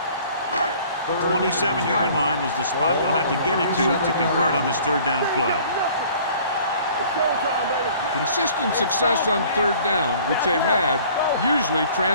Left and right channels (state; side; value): inverted; both; correlation -0.52